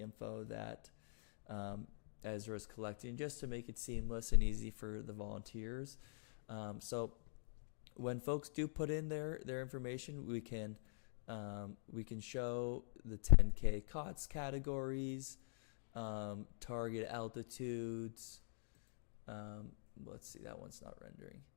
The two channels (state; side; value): silent; right; digital silence